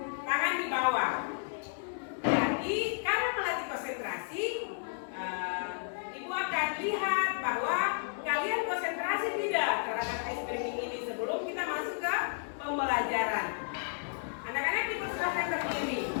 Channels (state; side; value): silent; right; 56 dB below the other